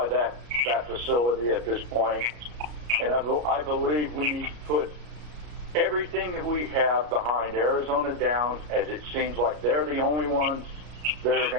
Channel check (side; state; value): left; late; 33 ms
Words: that facility at this point, and I believe we need to put everything that we have behind Arizona Downs, as it seems like they're the only ones that are